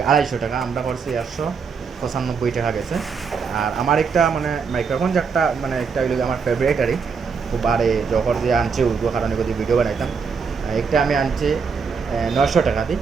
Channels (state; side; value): quieter; left; 5.6 dB